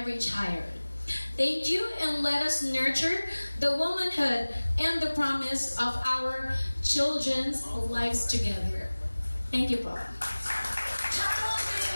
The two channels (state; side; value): inverted; both; correlation -1.00